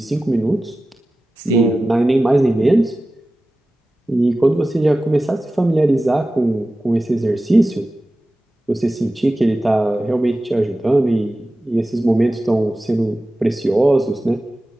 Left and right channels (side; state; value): both; normal; correlation 0.95